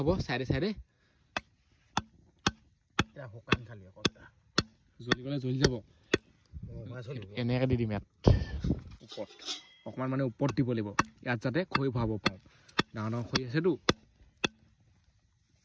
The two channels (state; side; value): identical; both; correlation 1.00